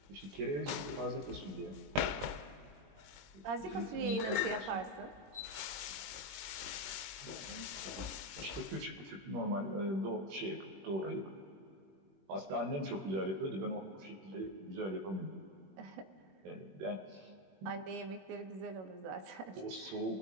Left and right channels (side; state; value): left; late; 20 ms